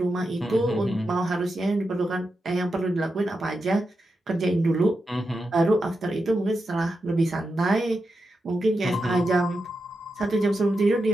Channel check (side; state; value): both; normal; correlation 0.88